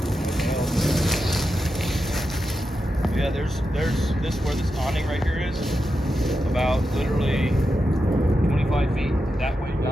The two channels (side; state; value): both; normal; correlation 0.88